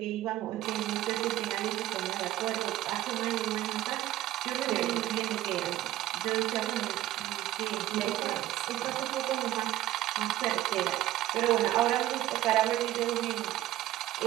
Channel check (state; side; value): quieter; left; 14.2 dB